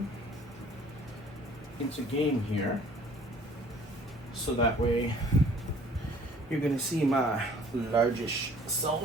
into game here. So that way you're going to see my largish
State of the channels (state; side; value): normal; both; correlation 0.54